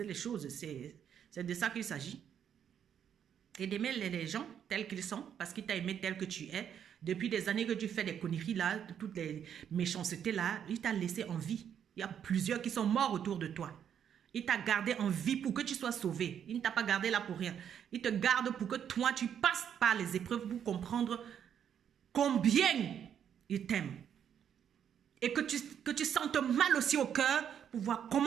les choses. C'est de ça qu'il s'agit. Et d'aimer les gens tels qu'ils sont, parce qu'il t'a aimé tel que tu es. Depuis des années que tu fais des conneries là, toutes les méchancetés là, il t'a laissé en vie. Il y a plusieurs qui sont morts autour de toi. Il t'a gardé en vie pour que tu sois sauvé. Il ne t'a pas gardé là pour rien. Il te garde pour que toi, tu passes par les épreuves pour comprendre combien il t'aime. Et que tu sentes mal aussi au cœur pour voir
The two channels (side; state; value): left; quieter; 8.8 dB